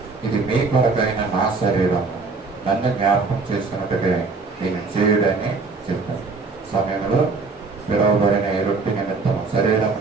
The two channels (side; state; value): left; quieter; 4.2 dB